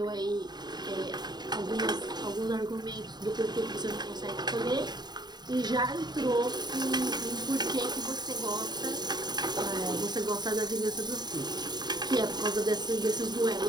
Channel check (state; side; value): late; left; 0.20 ms